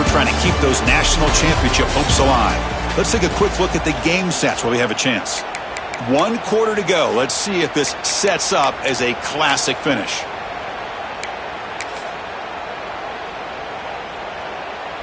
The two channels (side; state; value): both; identical; correlation 1.00